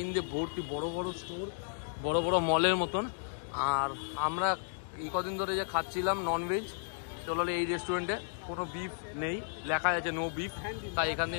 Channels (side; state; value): right; silent; digital silence